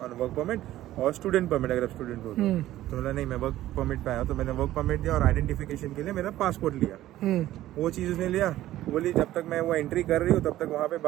on work permit और स्टूडेंट परमिट अगर आप स्टूडेंट हो तो बोला नहीं मैं वर्क परमिट पे आया, तो मैंने वर्क परमिट दिया और आइडेंटिफिकेशन के लिए मेरा पासपोर्ट लिया। वो चीज़ उसने लिया, बोली जब तक मैं वो एंट्री कर रही हूँ तब तक वहाँ पे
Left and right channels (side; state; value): left; quieter; 14.4 dB